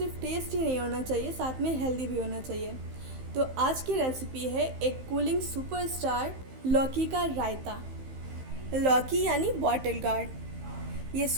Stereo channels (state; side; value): late; left; 15 ms